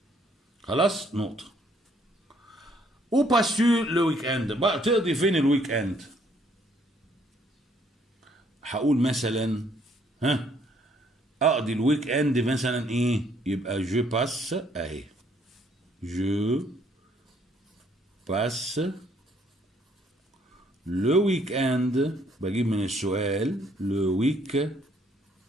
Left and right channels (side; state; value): both; normal; correlation 0.66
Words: خلاص نقطة. او باسو لو ويك اند، بقى تقضي فين الويك اند؟ هقول مثلا اقضي الويك اند مثلا ايه؟ يبقى جو باس اهي، جو باس لو ويك اند، بجيب من السؤال لو ويك